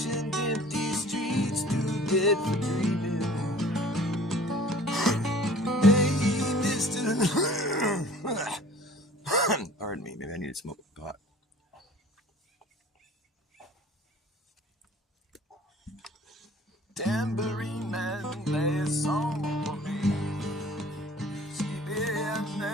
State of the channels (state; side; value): normal; both; correlation 0.48